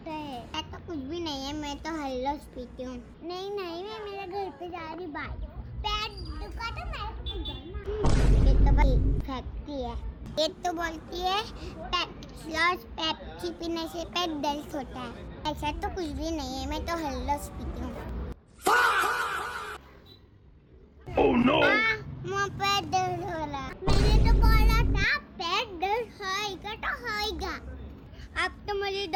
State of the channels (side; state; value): both; identical; correlation 1.00